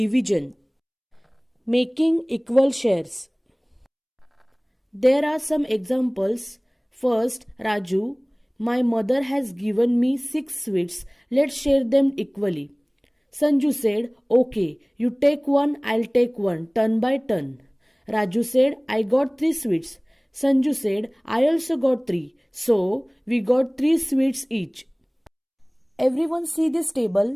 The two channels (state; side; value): identical; both; correlation 1.00